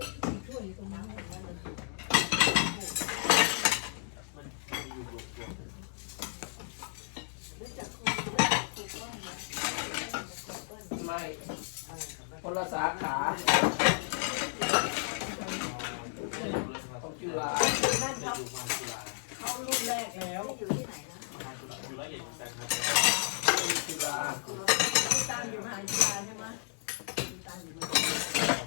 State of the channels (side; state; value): right; silent; digital silence